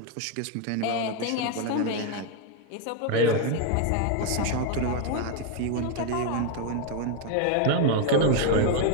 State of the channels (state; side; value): different; both; correlation 0.00